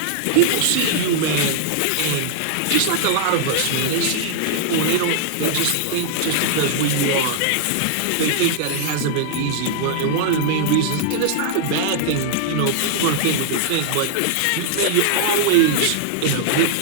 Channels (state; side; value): different; both; correlation -0.01